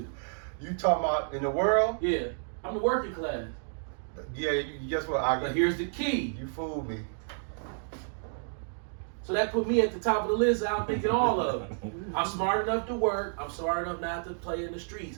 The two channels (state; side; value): silent; left; digital silence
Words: You talking about in the world? Yeah. I'm the working class. Yeah, you guess what? But here's the key. You fooled me. So that put me at the top of the list. I'm thinking all of them. I'm smart enough to work. I'm smart enough not to play in the streets.